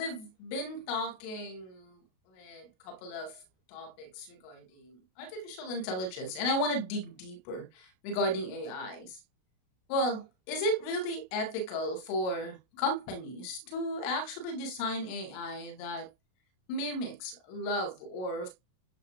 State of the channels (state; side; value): late; right; 32 ms